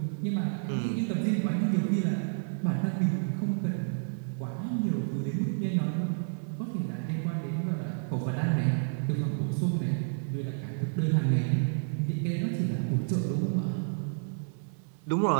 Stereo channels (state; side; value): silent; left; 58 dB below the other